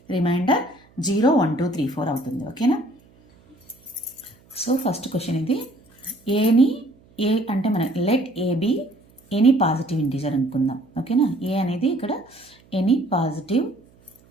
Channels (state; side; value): noise; right; hum, 30 dB below the sound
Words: రిమైండర్ 0, 1, 2, 3, 4 అవుతుంది. ఓకేనా? సో ఫస్ట్ క్వశ్చన్ ఇది. ఏ అంటే మనం let A be any positive integer అనుకుందాం. ఓకేనా? ఏ అనేది ఇక్కడ ఎనీ పాజిటివ్